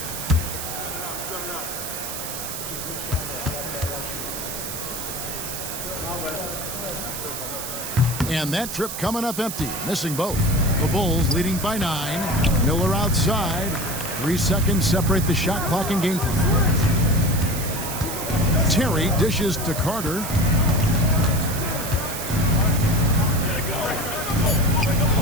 And that trip coming up empty, missing both. The Bulls leading by 9. Miller outside. 3 seconds separate the shot clock and game clock. Terry dishes to Carter.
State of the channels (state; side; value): noise; right; hiss, 6 dB below the sound